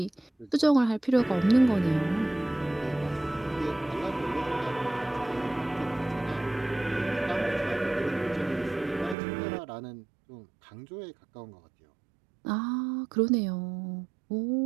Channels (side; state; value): left; drops out; at 9.2 s